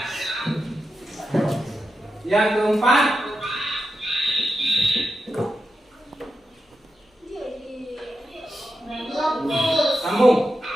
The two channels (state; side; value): normal; both; correlation 0.88